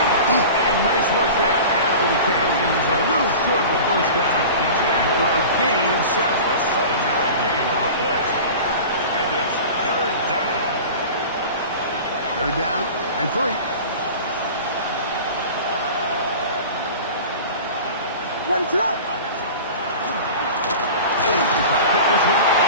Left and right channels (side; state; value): both; inverted; correlation -0.36